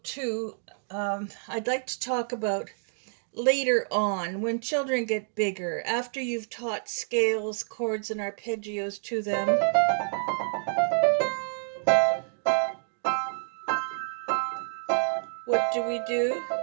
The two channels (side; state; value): left; silent; digital silence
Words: 2, I'd like to talk about later on when children get bigger, after you've taught scales, chords, and arpeggios to them. What do we do?